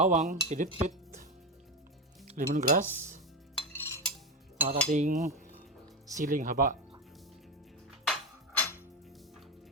pinitpit, lemongrass, at ating siling haba.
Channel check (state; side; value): normal; both; correlation 0.15